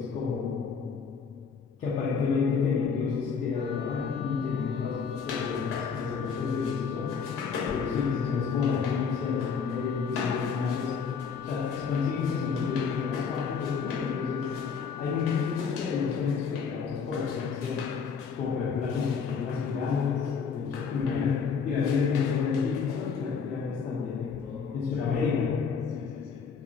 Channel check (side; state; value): right; quieter; 5.9 dB